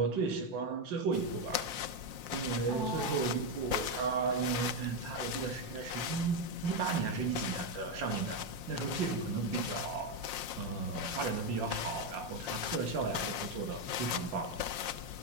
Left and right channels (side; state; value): left; late; 5.7 ms